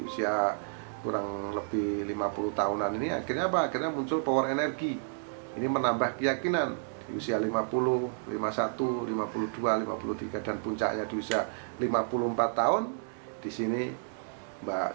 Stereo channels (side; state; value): left; silent; digital silence